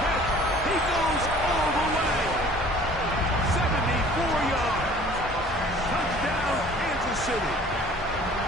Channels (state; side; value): normal; both; correlation 0.50